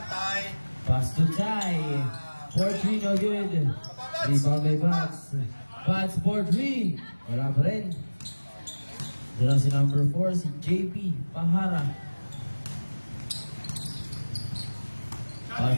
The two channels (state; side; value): inverted; both; correlation -1.00